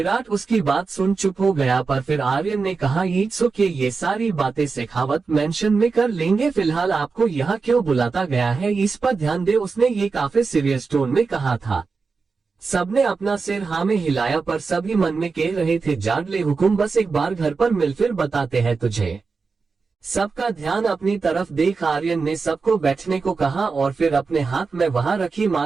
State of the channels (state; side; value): quieter; left; 4.6 dB